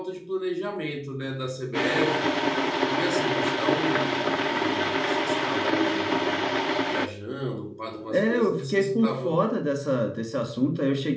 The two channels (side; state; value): both; identical; correlation 1.00